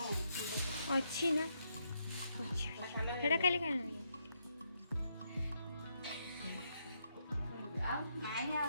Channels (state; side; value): inverted; both; correlation -0.78